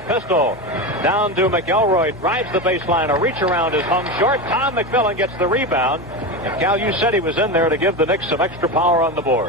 Pistol down to McElroy, drives the baseline. A reach around is hung short. Tom McMillan gets the rebound. And Cal, you said he was in there to give the Knicks some extra power on the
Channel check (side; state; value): both; normal; correlation 0.19